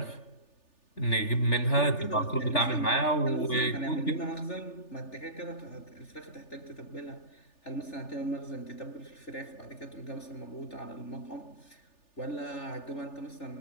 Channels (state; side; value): late; right; 3.4 ms